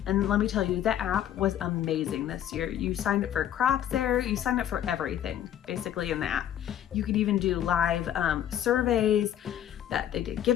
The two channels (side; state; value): right; quieter; 10.7 dB